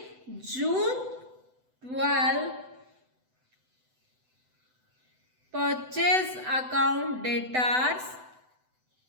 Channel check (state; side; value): late; left; 7.9 ms